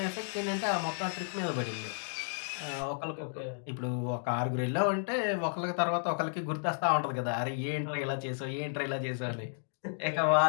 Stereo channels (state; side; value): silent; right; digital silence